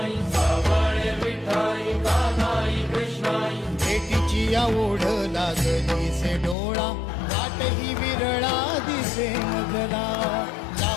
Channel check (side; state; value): right; drops out; at 6.6 s